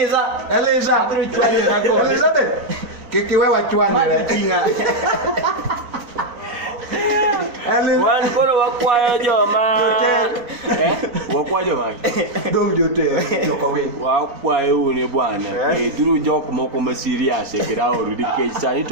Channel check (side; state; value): left; late; 4.2 ms